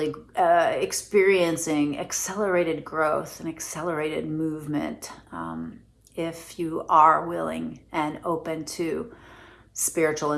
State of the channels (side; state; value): both; identical; correlation 1.00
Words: experiencing accelerated growth and accelerated movement. If you are willing and open to spiritual